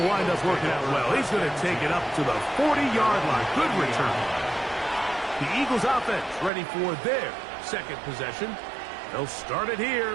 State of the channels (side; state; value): left; drops out; at 6.5 s